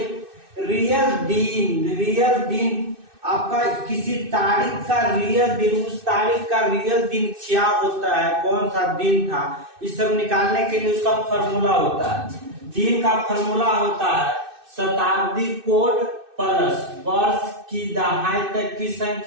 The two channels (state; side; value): late; left; 2.6 ms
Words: रियल दिन आपका किसी तारीख का रियल दिन, उस तारीख का रियल दिन क्या होता है, कौन सा दिन था, इस सब निकालने के लिए उसका फॉर्मूला होता है। दिन का फॉर्मूला होता है शताब्दी कोड प्लस वर्ष की दहाई तक की